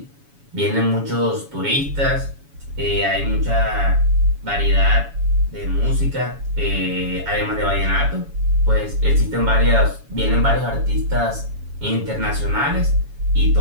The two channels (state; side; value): late; left; 7.1 ms